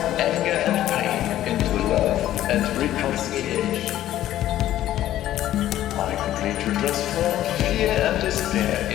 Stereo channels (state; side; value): quieter; right; 13.1 dB